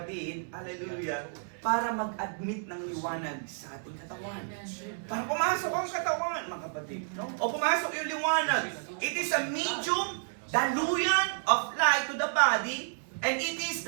hallelujah, para mag-admit ng liwanag sa ating katawan. Para pumasok ang katawan, mga kapatid, no? O pumasok yung liwanag. It is a medium, daluyan of light to the body, and it is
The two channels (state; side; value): silent; left; 57 dB below the other